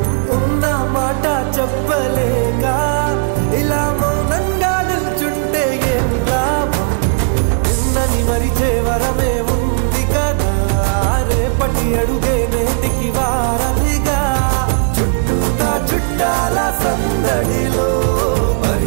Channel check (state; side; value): silent; left; digital silence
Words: ఉన్న మాట చెప్పలేక ఇలా మౌనంగా నిల్చుంటే ఏం లాభం నిన్నని మరిచే వరమే ఉంది కదా రేపటి అడుగే నేటికి వారధిగా చుట్టూతా చుట్టాల సందడిలో